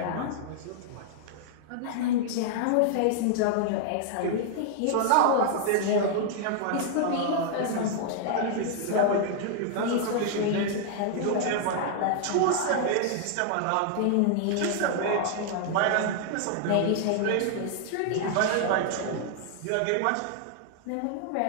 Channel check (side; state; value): both; different; correlation 0.00